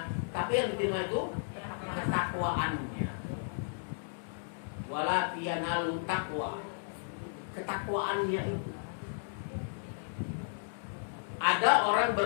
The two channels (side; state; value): right; silent; digital silence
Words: tapi yang diterima itu ketakwaannya. Wala yanalu taqwa. Ketakwaannya. Ada orang